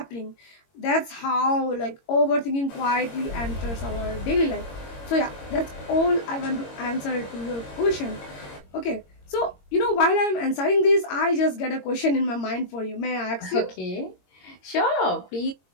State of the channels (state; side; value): late; right; 22 ms